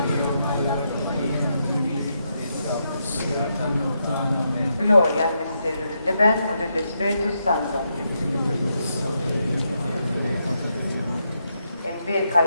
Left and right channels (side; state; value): both; inverted; correlation -0.81